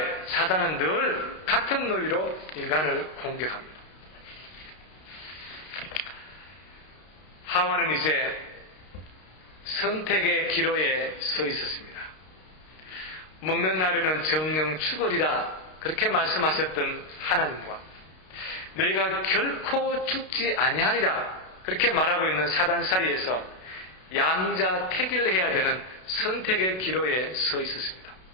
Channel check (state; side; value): late; right; 32 ms